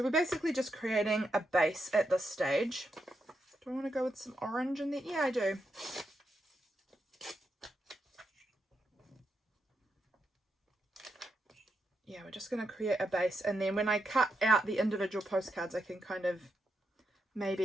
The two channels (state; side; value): normal; both; correlation 0.83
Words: we're basically just creating a base at this stage. Do I want to go with some orange in there? Yeah, I do. Yeah, we're just going to create a base, and then when I cut out the individual postcards, I can kind of